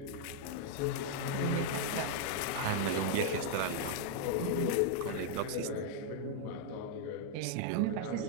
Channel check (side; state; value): both; different; correlation -0.01